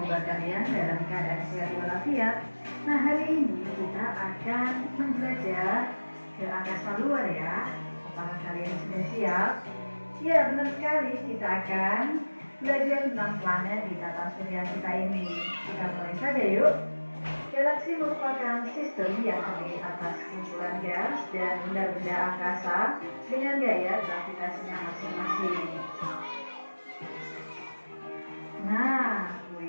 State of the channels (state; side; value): inverted; both; correlation -1.00